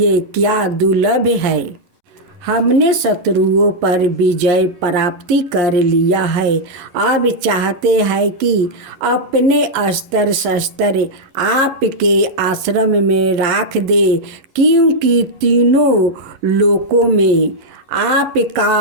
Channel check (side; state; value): left; late; 11 ms